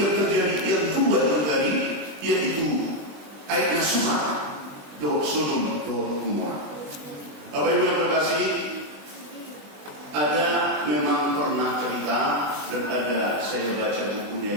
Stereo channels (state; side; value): late; left; 20 ms